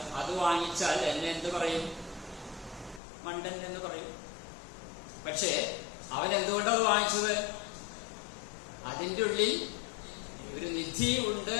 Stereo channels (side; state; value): right; drops out; at 3.0 s